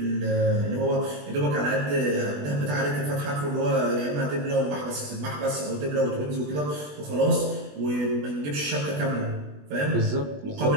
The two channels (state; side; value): late; left; 20 ms